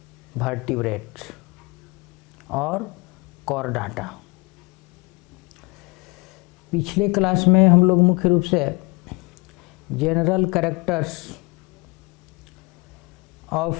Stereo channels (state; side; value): quieter; right; 28.0 dB